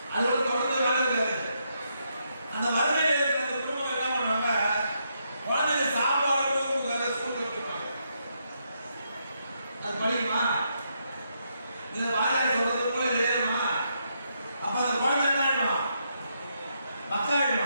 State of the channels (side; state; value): both; inverted; correlation -0.78